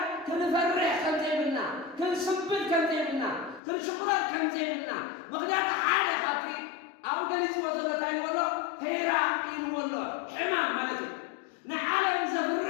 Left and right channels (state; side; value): drops out; right; at 3.6 s